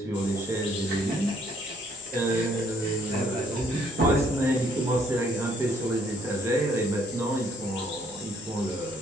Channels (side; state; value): both; normal; correlation 0.64